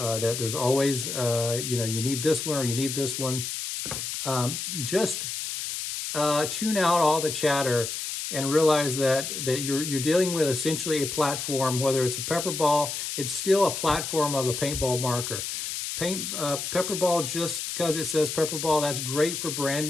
there's always, you know, you need this one or you need this one. Just tune out all the chatter and realize that you're dealing with essentially a platform. Whether it's a PepperBall, it's still a platform of a paintball marker. PepperBall, just because it says PepperBall, that's great for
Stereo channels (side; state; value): left; noise; hiss, 4 dB below the sound